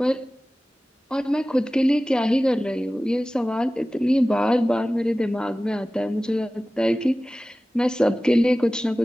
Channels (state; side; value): normal; both; correlation 0.97